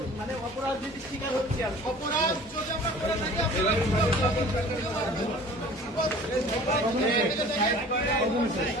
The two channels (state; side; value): normal; both; correlation 0.46